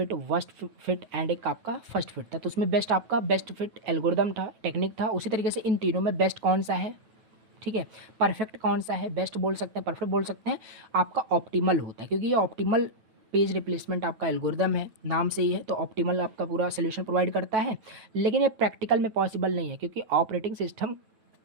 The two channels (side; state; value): left; late; 9.2 ms